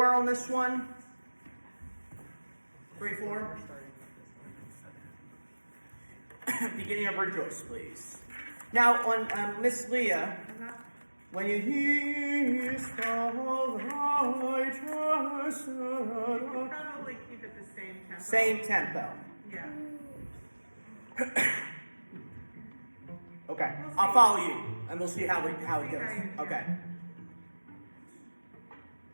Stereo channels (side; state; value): both; inverted; correlation -1.00